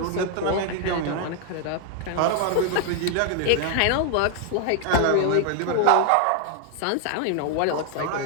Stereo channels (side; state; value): both; different; correlation 0.00